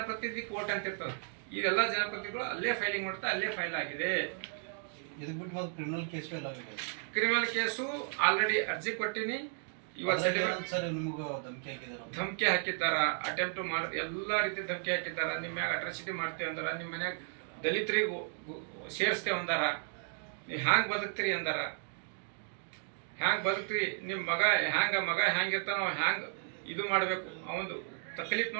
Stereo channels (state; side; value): silent; left; 55 dB below the other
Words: ಕೋರ್ಟ್ ಅಂತ ಇರ್ತದೆ. ಇದೆಲ್ಲ ಜನಪ್ರತಿನಿಧಿಗಳು ಅಲ್ಲೇ ಫೈಲಿಂಗ್ ಮಾಡ್ತಾ ಅಲ್ಲೇ ಫೈಲ್ ಆಗಿದೆ. ಕ್ರಿಮಿನಲ್ ಕೇಸು ಆಲ್ರೆಡಿ ಅರ್ಜಿ ಕೊಟ್ಟಿನಿ. ಧಮಕಿ ಹಾಕಿದ್ದಾರ, ಅಟೆಂಪ್ಟ್ ಮಾಡಿ ಎಲ್ಲ ರೀತಿ ಧಮಕಿ ಹಾಕಿದ್ದಾರ. ನಿಮ್ಮ ಮ್ಯಾಗ ಅಟ್ರಾಸಿಟಿ ಮಾಡ್ತೇವೆ ಅಂದಾರ, ನಿಮ್ಮ ಮನ್ಯಾಗ ದಲಿತರಿಗೂ ಸೇರಿಸ್ತೇವೆ ಅಂದಾರ, ನೀವು ಹ್ಯಾಂಗ್ ಬದುಕ್ತೀರಿ ಅಂದಾರ. ಹ್ಯಾಂಗ್ ಬದುಕ್ತೀರಿ, ನಿಮ್ಮ ಮಗ ಹ್ಯಾಂಗಿರ್ತಾನ ಹ್ಯಾಂಗ್ ಇದು ಮಾಡಬೇಕು, ಅವನು ತಕ್ಲೀಫ್